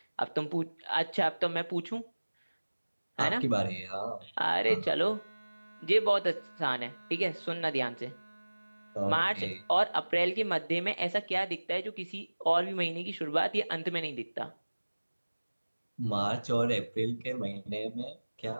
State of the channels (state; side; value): inverted; both; correlation -1.00